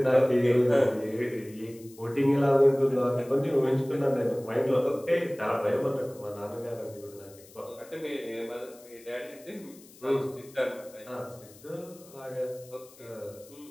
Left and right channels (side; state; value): left; noise; hiss, 23 dB below the sound